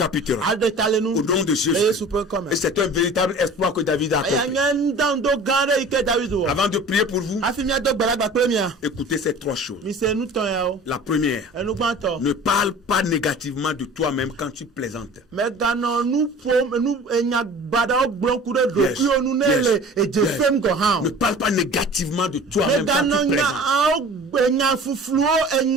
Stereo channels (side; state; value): both; normal; correlation 0.42